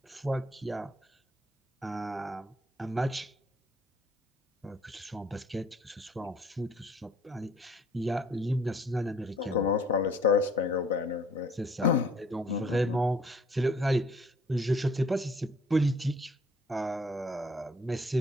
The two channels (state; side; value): normal; both; correlation 0.59